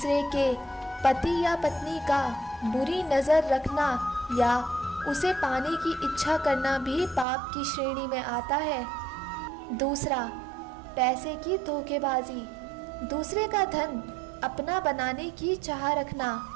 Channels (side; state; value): left; drops out; at 7.2 s